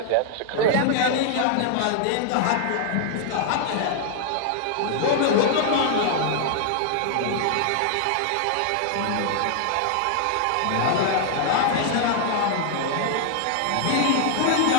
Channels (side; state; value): both; different; correlation 0.00